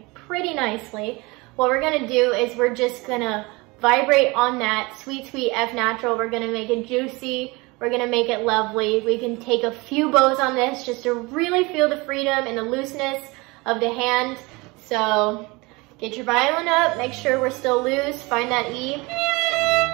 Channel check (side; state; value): left; quieter; 24.8 dB